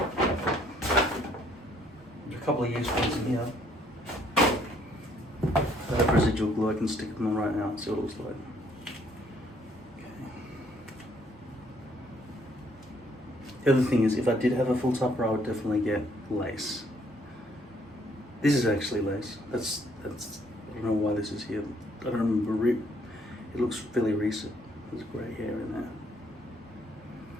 There's a couple of used ones in here. I have residual glue, I can stick them on right now and see what it looks like. The other thing is, if I did have a full topper, I would definitely get lace. This is actually lace. That's. I don't know why this is here. I don't remember it. It looks fairly recent. There's grey hair in there.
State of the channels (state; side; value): normal; both; correlation 0.66